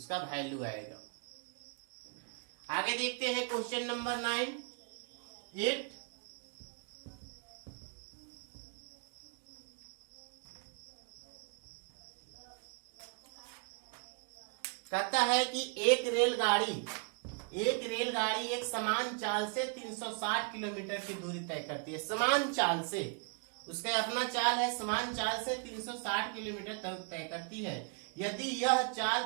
वैल्यू आएगा। आगे देखते हैं क्वेश्चन नंबर 8। कहता है कि एक रेलगाड़ी एक समान चाल से 360 किलोमीटर की दूरी तय करती है। समान चाल से, उसका अपना चाल है, समान चाल से 360 किलोमीटर तय करती है। यदि यह चाल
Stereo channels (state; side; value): quieter; left; 39.6 dB